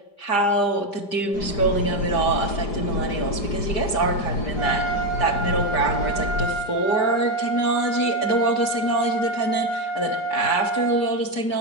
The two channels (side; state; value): right; late; 5.0 ms